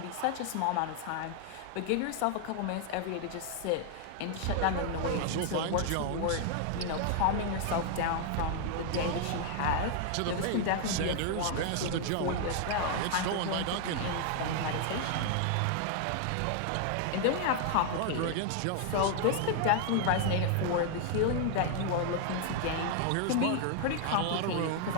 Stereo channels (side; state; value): both; different; correlation 0.00